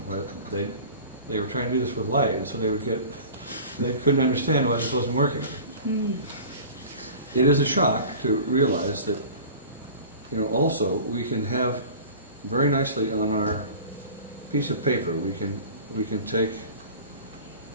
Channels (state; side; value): inverted; both; correlation -0.39